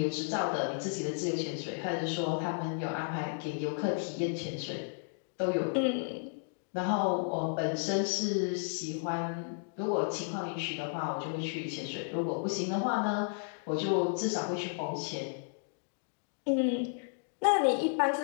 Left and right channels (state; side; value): silent; right; digital silence